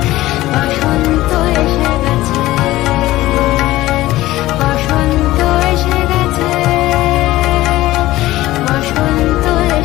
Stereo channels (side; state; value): right; quieter; 16.7 dB